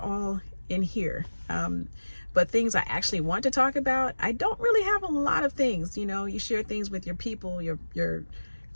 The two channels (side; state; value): both; inverted; correlation -1.00